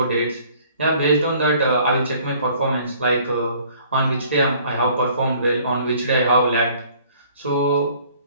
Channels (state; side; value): inverted; both; correlation -0.57